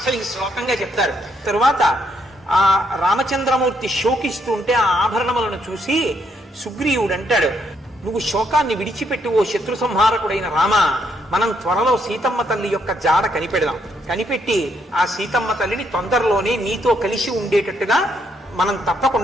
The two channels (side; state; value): both; normal; correlation 0.74